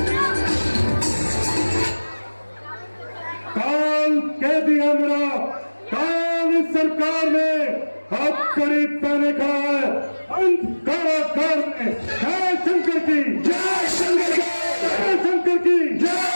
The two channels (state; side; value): inverted; both; correlation -1.00